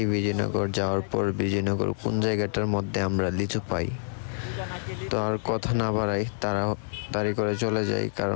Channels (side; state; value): right; silent; 60 dB below the other